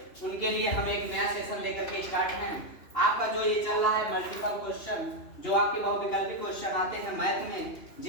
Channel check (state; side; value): late; right; 2.9 ms